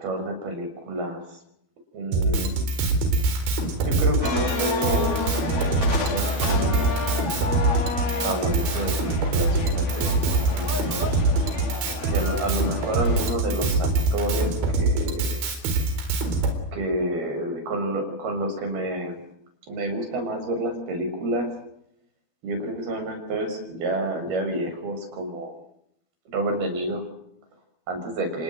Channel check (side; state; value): left; late; 13 ms